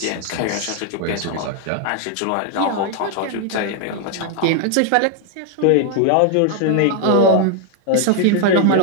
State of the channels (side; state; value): both; different; correlation 0.00